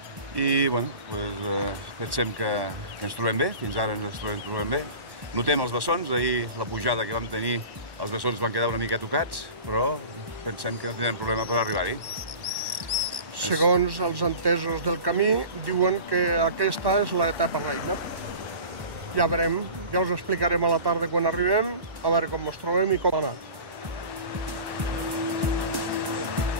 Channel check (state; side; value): late; left; 1.1 ms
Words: I pensem que ens trobem bé, fins ara ens trobem bé. Notem els bessons, ahir la pujada que vam tenir, els bessons van quedar una mica tocats, però pensem que no tindrem problema per arribar-hi. Segons els entesos del camí, diuen que aquesta és l'etapa reina. Ja veurem, ja us explicarem a la tarda quan arribem, a veure com ens trobem i com ha anat.